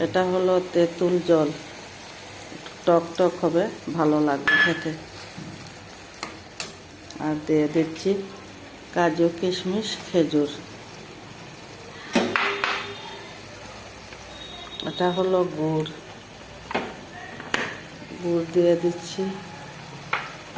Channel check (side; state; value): both; identical; correlation 1.00